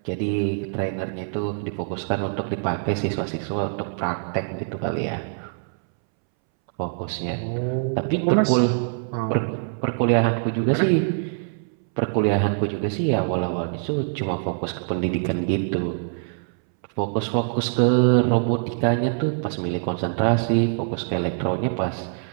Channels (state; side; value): silent; left; 63 dB below the other